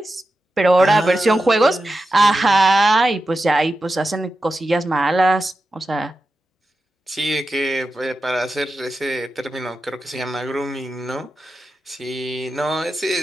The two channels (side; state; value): both; normal; correlation 0.91